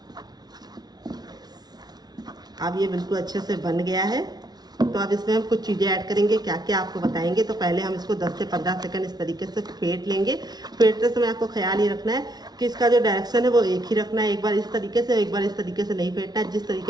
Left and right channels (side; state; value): left; late; 0.19 ms